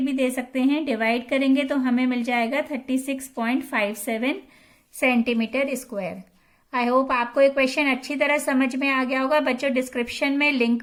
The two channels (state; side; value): identical; both; correlation 1.00